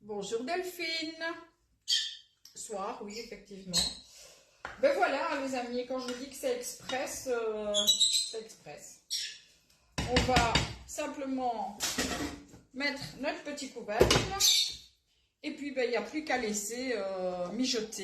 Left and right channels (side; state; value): both; identical; correlation 1.00